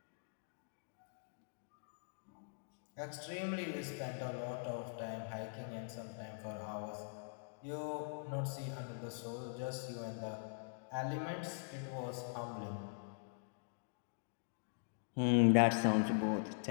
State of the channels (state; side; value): silent; right; digital silence